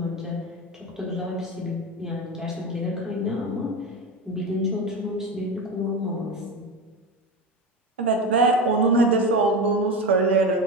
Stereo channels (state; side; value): normal; both; correlation 0.20